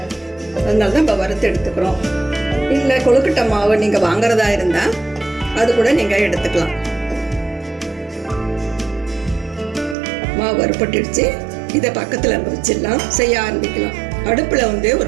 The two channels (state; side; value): drops out; left; at 10.0 s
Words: அதனால தான் இப்போ வறுத்து எடுத்துக்கிறோம். இல்லை கொழுக்கட்டை மாவு நீங்கள் வாங்குறதா இருந்தால் அது கூட நீங்கள் எடுத்துக்கலாம். மாவு வறுப்பட்டுடுச்சு. இதை பக்கத்தில் வச்சிடலாம், செய்ய ஆரம்பிக்கலாம். அடுப்பில்